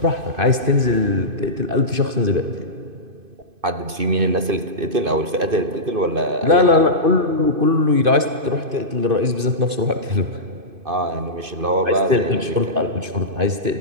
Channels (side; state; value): left; late; 2.5 ms